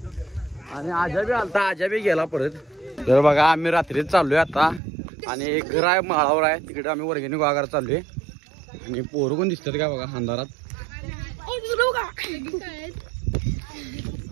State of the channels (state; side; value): drops out; left; at 4.8 s